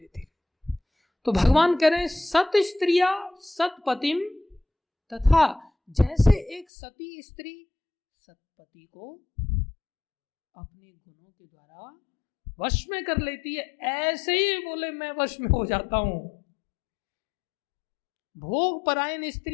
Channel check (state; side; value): drops out; right; at 6.7 s